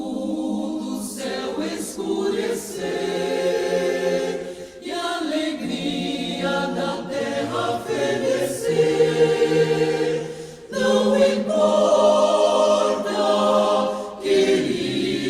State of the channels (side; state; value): both; identical; correlation 1.00